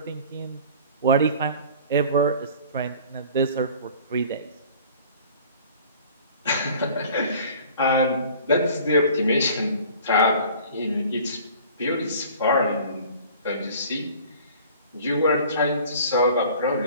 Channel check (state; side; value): inverted; both; correlation -0.47